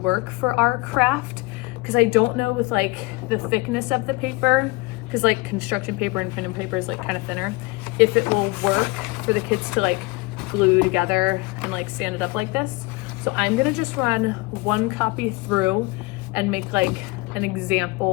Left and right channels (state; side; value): quieter; right; 22.6 dB